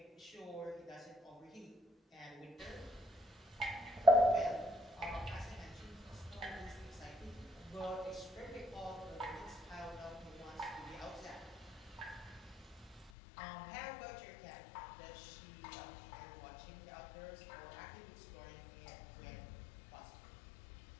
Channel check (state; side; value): drops out; right; at 13.1 s